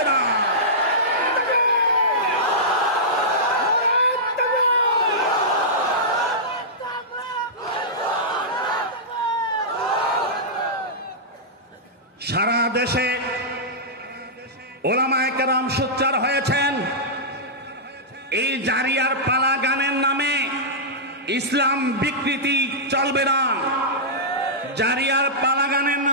না। সারা দেশে ওলামায়ে কেরাম সোচ্চার হয়েছেন, এই জারিয়ার পালা গানের নামে ইসলাম বিকৃতি চলবে না। জারিয়ার পালা গানের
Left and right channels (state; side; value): normal; both; correlation -0.14